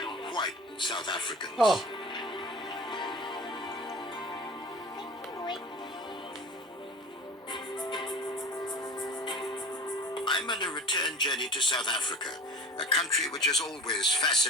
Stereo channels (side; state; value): both; normal; correlation 0.37